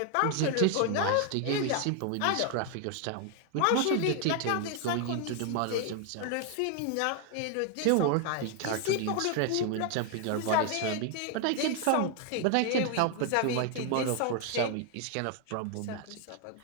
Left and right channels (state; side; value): different; both; correlation 0.00